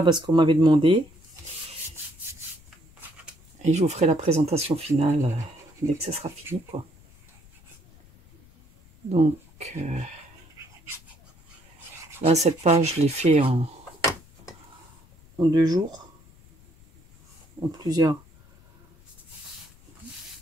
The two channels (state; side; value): noise; left; rumble, 26 dB below the sound